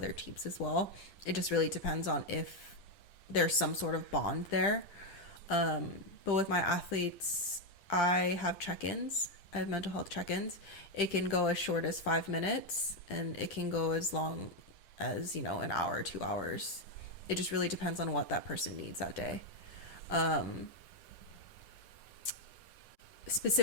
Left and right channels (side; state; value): right; late; 10 ms